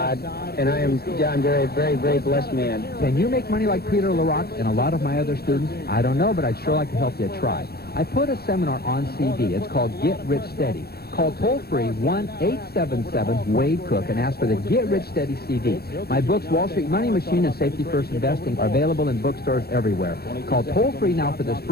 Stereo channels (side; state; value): right; late; 0.46 ms